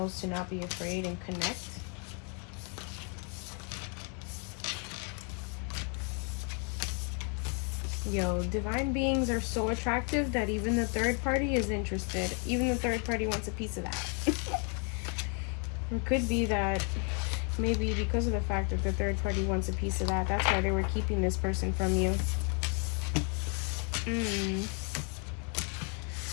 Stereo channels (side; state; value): right; quieter; 37.2 dB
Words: to not be afraid and connect. Yo, divine beings are so attractive that even the third party is interested. Even the third party wants a piece of that. It could be that maybe because of the fact that the third party wants a piece of that, that's why they were keeping this person from you.